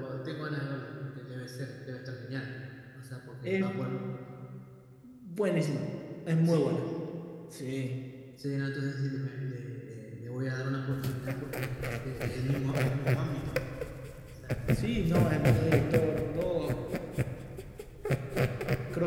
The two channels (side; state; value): both; identical; correlation 1.00